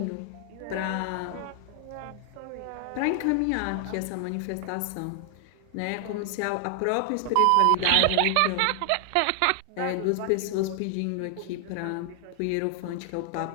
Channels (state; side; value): different; both; correlation 0.00